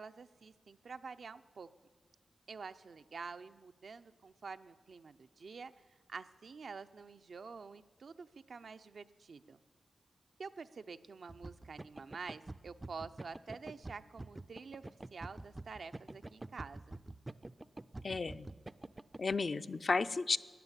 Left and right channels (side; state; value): both; normal; correlation 0.92